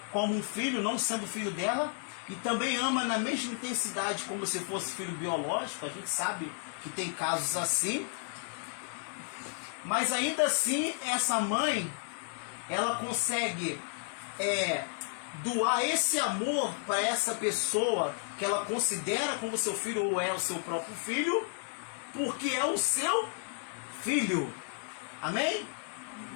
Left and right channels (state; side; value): silent; right; 56 dB below the other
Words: como um filho, não sendo filho dela, e também ama na mesma intensidade como se fosse filho biológico. A gente sabe que tem casos assim. Mas ainda assim, essa mãe, ela consegue doar esse amor para essa pessoa que ela considera como seu filho ou é o seu próprio filho, porque é o seu filho. Amém?